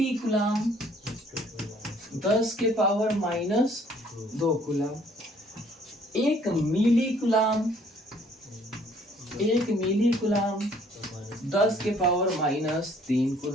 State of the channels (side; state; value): both; normal; correlation 0.60